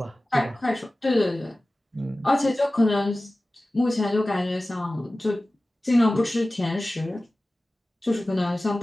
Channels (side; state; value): both; normal; correlation 0.97